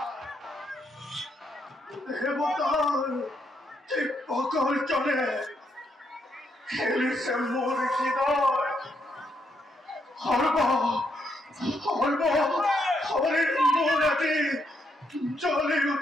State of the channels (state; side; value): normal; both; correlation 0.77